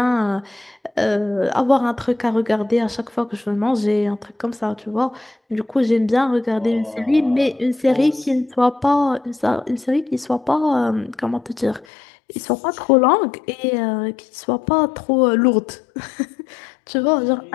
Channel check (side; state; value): right; drops out; at 11.9 s